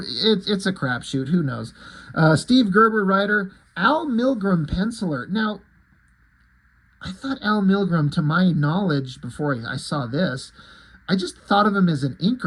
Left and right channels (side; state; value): both; identical; correlation 1.00